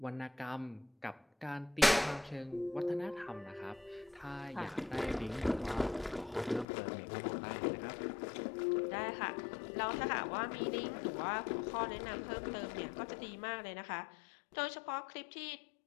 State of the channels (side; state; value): right; drops out; at 6.7 s